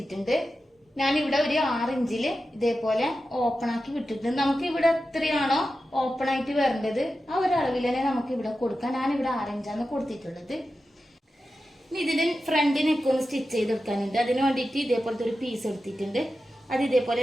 ഞാൻ ഇവിടെ ഒരു 6 ഇഞ്ചില് ഇതേപോലെ ഓപ്പൺ ആക്കി വിട്ടിട്ടുണ്ട്. നമുക്ക് ഇവിടെ എത്രയാണോ ഓപ്പൺ ആയിട്ട് വരേണ്ടത് ആ ഒരു അളവിൽ തന്നെ നമുക്ക് ഇവിടെ കൊടുക്കാം. ഞാൻ ഇവിടെ 6 ഇഞ്ചാണ് കൊടുത്തിട്ടുള്ളത്. ഇനി ഇതിന് ഫ്രണ്ട് നെക്ക് ഒന്ന് സ്റ്റിച്ച് ചെയ്തെടുക്കാനുണ്ട്. അതിന് വേണ്ടിയിട്ട് ഇതേപോലത്തെ ഒരു പീസ് എടുത്തിട്ടുണ്ട്. അത് ഇതേപോലെ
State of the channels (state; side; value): normal; both; correlation 0.92